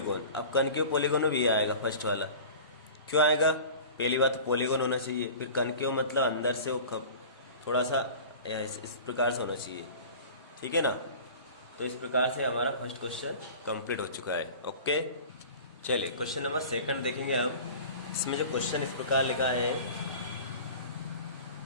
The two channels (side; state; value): both; inverted; correlation -0.39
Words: अब कनकेव पॉलीगॉन में भी ये आएगा फर्स्ट वाला, क्यों आएगा, पहली बात तो पॉलीगॉन होना चाहिए, फिर कनकेव मतलब अंदर से वो थोड़ा सा इस प्रकार से होना चाहिए, ठीक है ना। तो इस प्रकार से हमारा फर्स्ट क्वेश्चन कंप्लीट हो चुका है। ओके, चलिए क्वेश्चन नंबर सेकंड देखेंगे हम। इसमें जो क्वेश्चन इस प्रकार लिखा है,